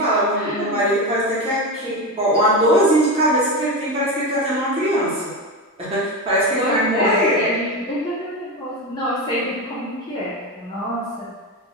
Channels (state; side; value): normal; both; correlation 0.18